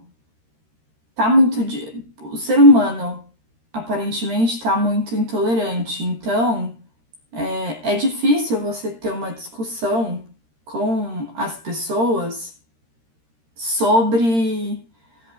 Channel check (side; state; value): left; late; 13 ms